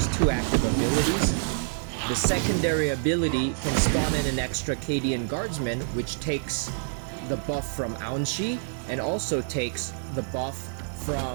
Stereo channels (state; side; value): silent; left; digital silence